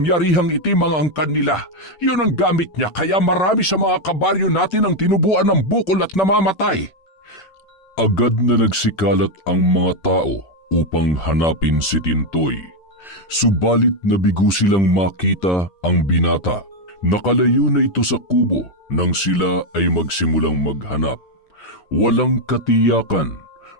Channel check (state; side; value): late; right; 10 ms